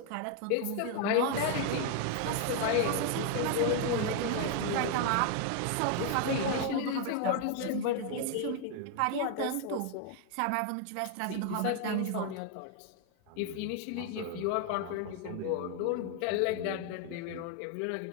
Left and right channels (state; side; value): different; both; correlation 0.00